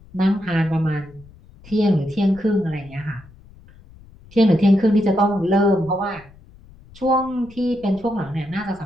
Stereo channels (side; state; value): left; noise; rumble, 23 dB below the sound